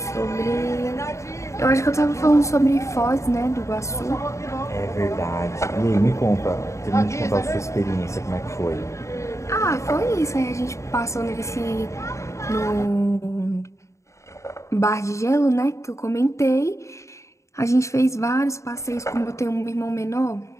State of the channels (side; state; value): right; late; 0.14 ms